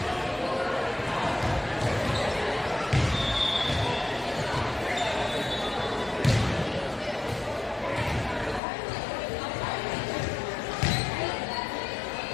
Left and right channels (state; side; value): drops out; right; at 8.6 s